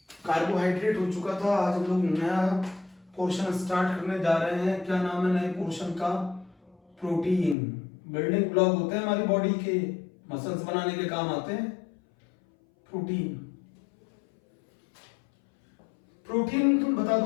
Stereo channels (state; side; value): drops out; right; at 7.6 s